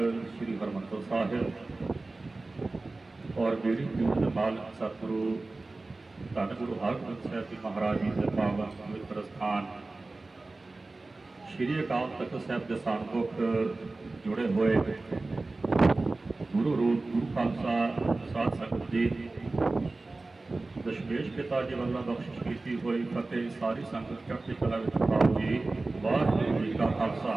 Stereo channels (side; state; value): left; quieter; 3.3 dB